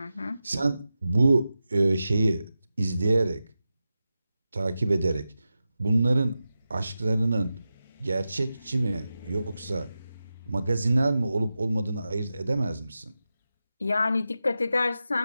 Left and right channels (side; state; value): both; inverted; correlation -0.92